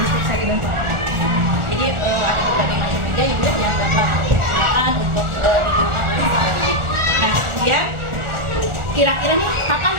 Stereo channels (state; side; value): late; left; 1.4 ms